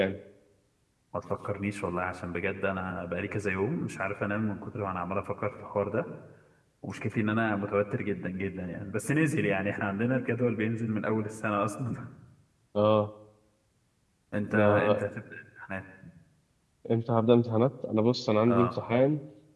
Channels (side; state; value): both; identical; correlation 1.00